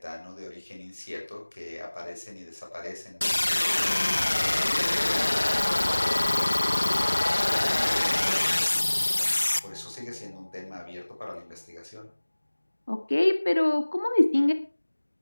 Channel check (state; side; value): inverted; both; correlation -1.00